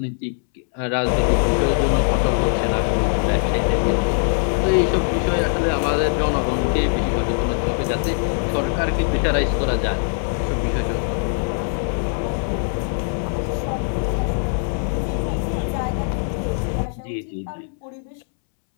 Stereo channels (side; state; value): right; silent; 65 dB below the other